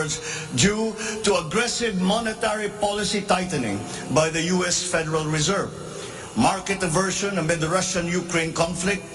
due to aggressive monetary policy tightening by the US Federal Reserve, market aversion amid the Russian-Ukraine conflict,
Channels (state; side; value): identical; both; correlation 1.00